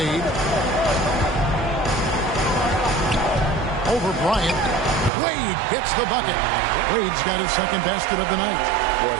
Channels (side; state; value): left; drops out; at 5.1 s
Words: Over Bryant. Wade gets the bucket. Wade's got his second basket of the night. Well,